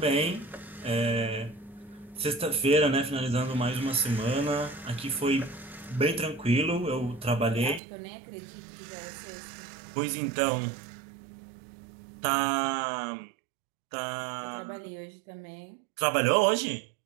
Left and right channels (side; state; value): left; drops out; at 7.8 s